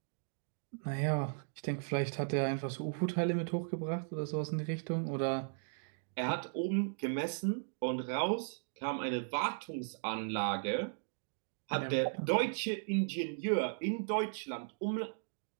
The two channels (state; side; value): silent; left; digital silence